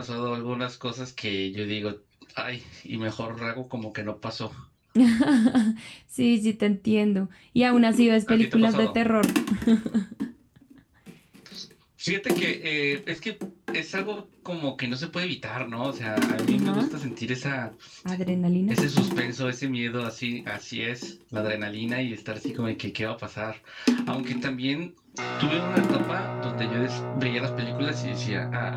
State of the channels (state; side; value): identical; both; correlation 1.00